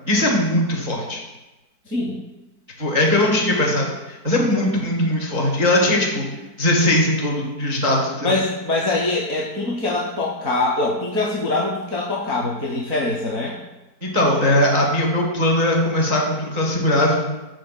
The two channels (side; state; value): left; late; 4.5 ms